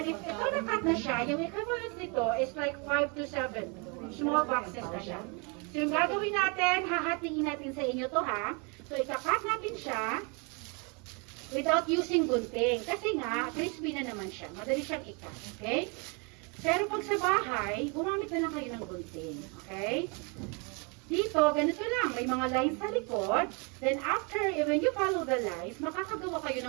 if ito nakat na siya, yung equivalent nito is like 5 to 7 small boxes na siya. So yung gagawin natin, hahatiin natin sa inyo to ha. So ikakat natin siya without using gunting. Kasi nga, crispy na naman siya. Madali siyang ikat. Okay? Pero pag sa bahay, gumamit na lang kayo ng gunting. Okay? Dito, ganito lang. May mga lines sa likod. Then after, when you follow the lines, makakagawa kayo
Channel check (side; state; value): left; quieter; 33.0 dB